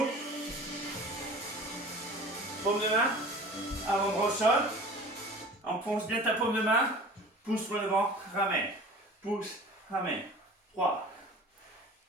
Paume de main. Avant-bras au sol. Enfonce bien ta paume de main. Pousse pour le devant. Ramène. Pousse. Ramène. 3,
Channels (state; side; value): normal; both; correlation 0.41